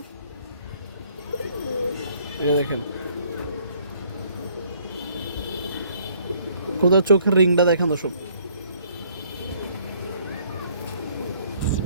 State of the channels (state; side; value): inverted; both; correlation -0.62